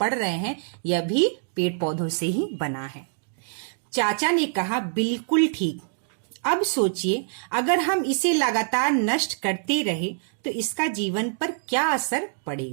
रहे हैं, यह भी पेड़ पौधों से ही बना है। चाचा ने कहा, बिल्कुल ठीक। अब सोचिए, अगर हम इसे लगातार नष्ट करते रहे तो इसका जीवन पर क्या असर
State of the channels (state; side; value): silent; left; digital silence